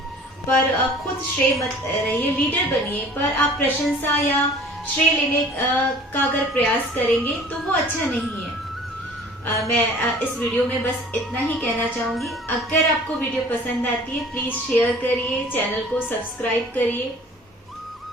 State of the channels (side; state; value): both; normal; correlation 0.48